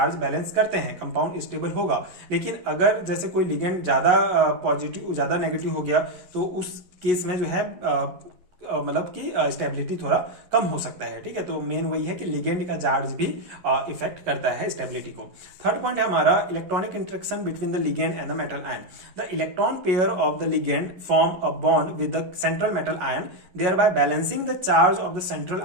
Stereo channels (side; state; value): left; late; 11 ms